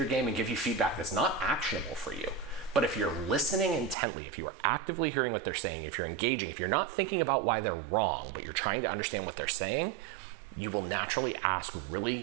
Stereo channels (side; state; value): left; drops out; at 4.0 s